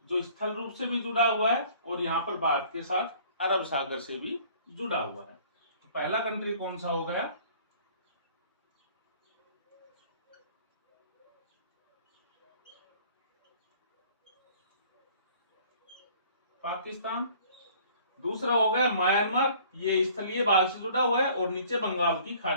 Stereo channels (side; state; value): both; inverted; correlation -0.53